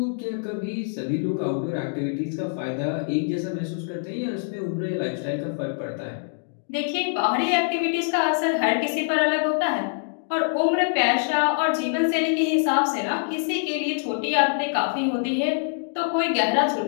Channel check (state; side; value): silent; right; digital silence